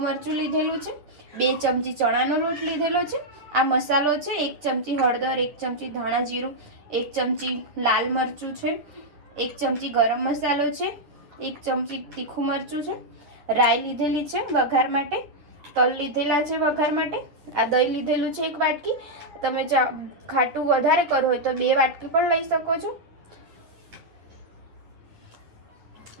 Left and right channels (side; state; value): left; late; 9.7 ms